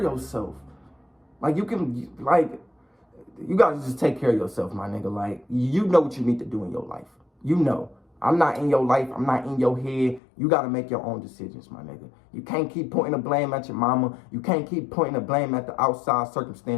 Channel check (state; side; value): drops out; right; at 10.2 s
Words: yourself. Like, you gotta just take care of yourself, my nigga. Like, you know what you need to do in your life. You know. I'm not in your life. I'm not in your head. You gotta make your own decisions, my nigga. You can't keep pointing the blame at your mama. You can't keep pointing the blame at the outside